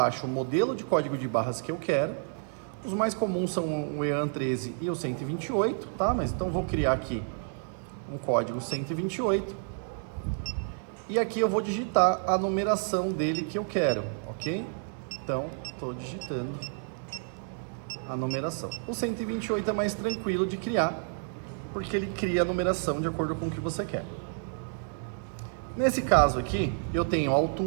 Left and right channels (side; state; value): left; silent; 57 dB below the other